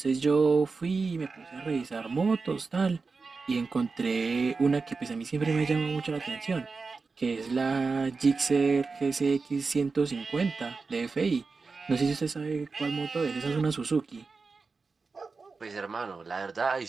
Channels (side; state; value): left; quieter; 4.4 dB